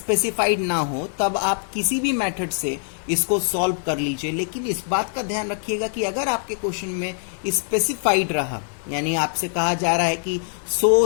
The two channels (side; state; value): right; silent; 62 dB below the other